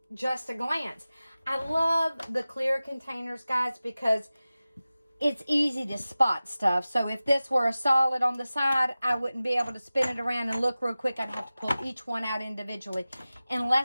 just a glance. I love the clear containers, guys, because it's easy to spot stuff. So if this were a solid on the side, I wouldn't be able to spin it around and look real quick. I'd have to pull each one out individually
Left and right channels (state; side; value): inverted; both; correlation -0.97